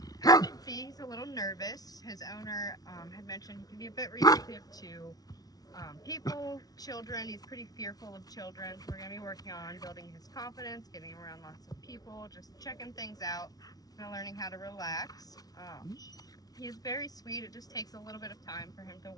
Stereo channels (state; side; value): late; right; 0.18 ms